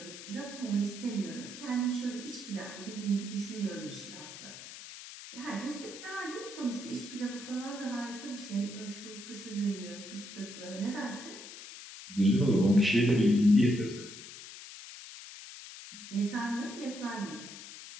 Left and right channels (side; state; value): left; noise; hiss, 13 dB below the sound